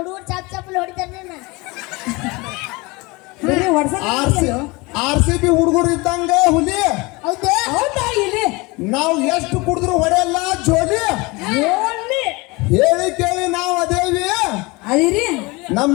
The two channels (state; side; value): quieter; right; 24.8 dB